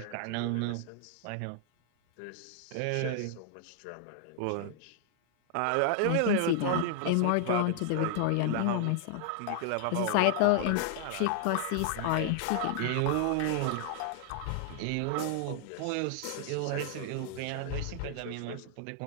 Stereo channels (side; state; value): both; different; correlation -0.01